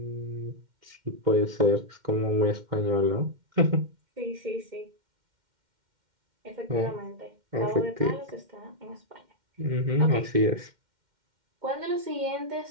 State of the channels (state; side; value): late; left; 2.1 ms